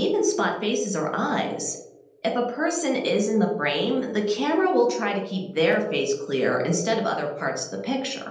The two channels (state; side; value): identical; both; correlation 1.00